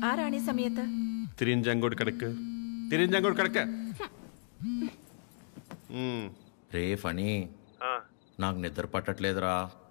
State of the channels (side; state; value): right; silent; digital silence